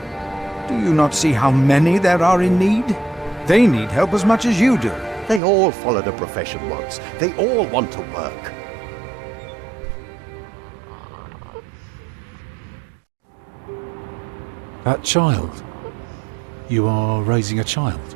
Do you not see how many there are in need? They need help as much as you do. They all followed a profession once. They all want to work. That child? You are raising a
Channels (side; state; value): left; drops out; at 5.4 s